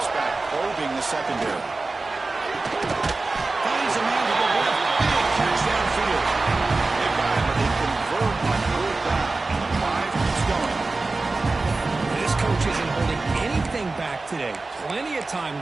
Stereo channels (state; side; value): quieter; left; 3.5 dB